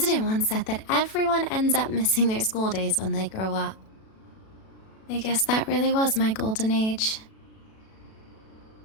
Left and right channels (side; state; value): right; late; 37 ms